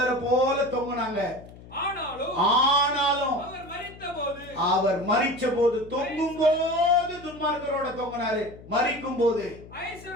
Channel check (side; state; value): left; noise; hum, 19 dB below the sound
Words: போல தொங்குனாங்க. ஆனாலும் அவர் மரித்த போது தொங்கும் போது துன்மார்க்கரோட தொங்கினாரு, மரிக்கும் போது